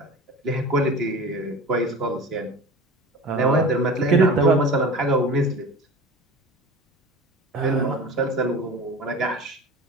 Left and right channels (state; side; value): normal; both; correlation 0.36